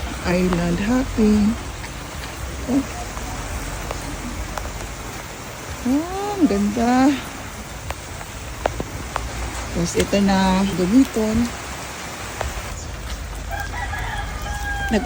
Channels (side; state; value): both; identical; correlation 1.00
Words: island hopping. Oh. Oh, ang ganda. Tapos ito na gamiton.